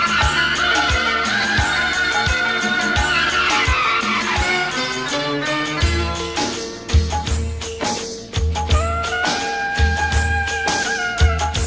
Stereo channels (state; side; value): identical; both; correlation 1.00